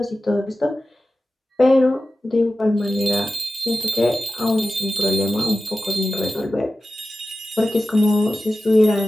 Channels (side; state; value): both; normal; correlation 0.94